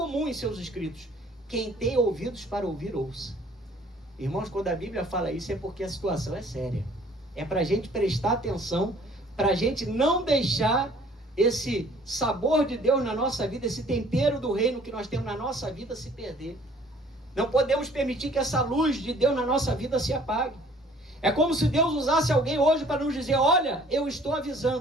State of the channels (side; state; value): both; normal; correlation 0.56